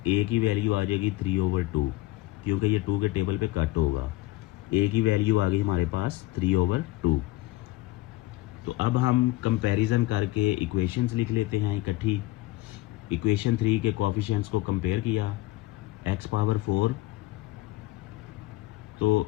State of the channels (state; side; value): quieter; right; 18.8 dB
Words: की वैल्यू आ जाएगी 3/2, क्योंकि ये 2 के टेबल पे कट होगा। a की वैल्यू आ गई हमारे पास 3/2। तो अब हम कंपैरिजन करके इक्वेशंस लिख लेते हैं इकट्ठी। इक्वेशन 3 के कोफिशिएंट्स को कंपेयर किया, x पावर 4 तो